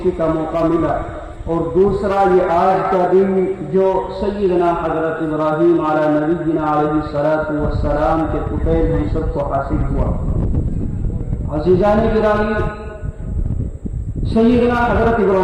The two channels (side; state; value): both; identical; correlation 1.00